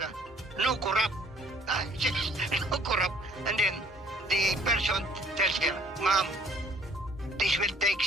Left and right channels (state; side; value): normal; both; correlation 0.58